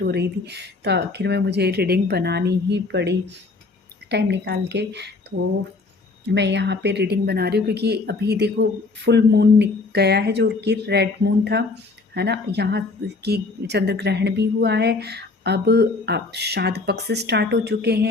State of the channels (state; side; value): quieter; right; 3.7 dB